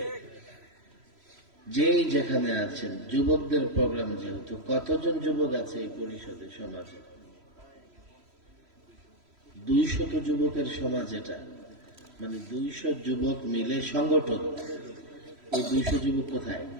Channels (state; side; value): late; left; 3.0 ms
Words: যেই যেখানে আছেন, যুবকদের প্রোগ্রাম যেহেতু, কতজন যুবক আছে এই পরিষদে, সমাজে 200 যুবকের সমাজ এটা, মানে 200 যুবক মিলে সংগঠন। ওই 200 যুবক কোথায়?